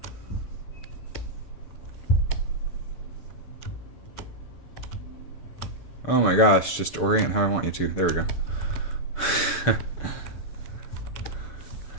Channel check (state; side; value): late; right; 6.7 ms